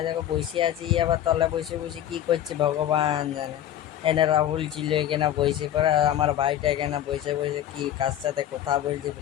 দেখো বসে আছি, আবার তলে বসে বসে কি করছে ভগবান জানে। এনে রাহুল ছিল এখানে বসে পড়ে, আর আমার ভাইটা এখানে বসে বসে কি কার সাথে কথা বলছে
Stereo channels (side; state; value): right; quieter; 11.4 dB